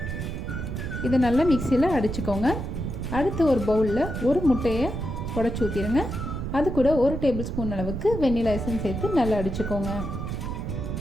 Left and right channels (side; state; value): right; noise; rumble, 4 dB below the sound